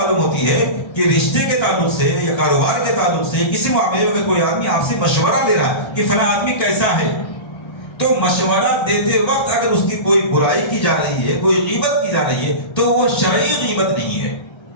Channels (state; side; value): late; right; 1.3 ms